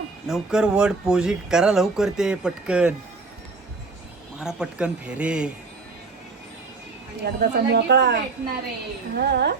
लवकर वड पोजी करा, लवकर ते पटकन मारा, पटकन फेरे. एकदाचा मोकळा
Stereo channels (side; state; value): left; quieter; 4.0 dB